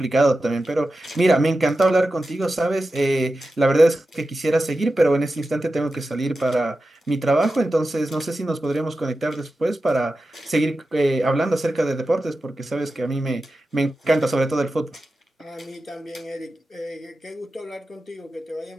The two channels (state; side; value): normal; both; correlation 0.92